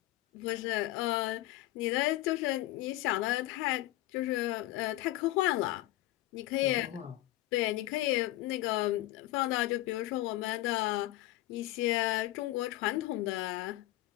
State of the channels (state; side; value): quieter; right; 16.8 dB